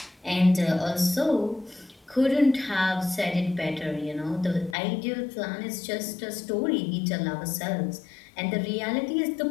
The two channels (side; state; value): right; drops out; at 4.8 s